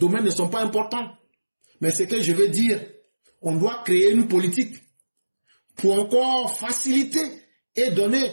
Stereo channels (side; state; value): both; inverted; correlation -1.00